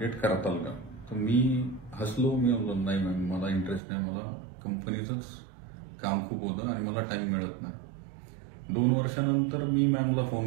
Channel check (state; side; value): drops out; left; at 3.8 s